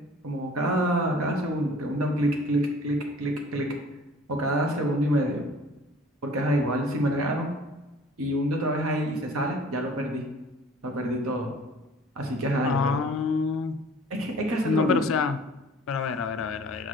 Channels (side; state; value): both; normal; correlation 0.50